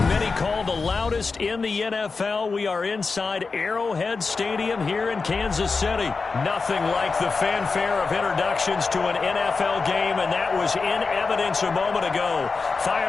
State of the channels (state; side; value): quieter; right; 4.4 dB